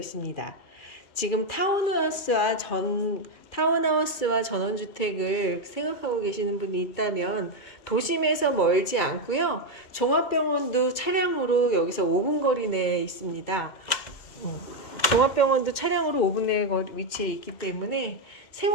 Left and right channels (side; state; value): right; late; 2.2 ms